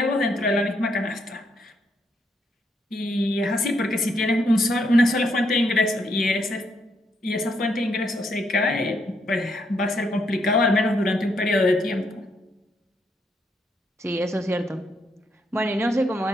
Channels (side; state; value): both; normal; correlation 0.76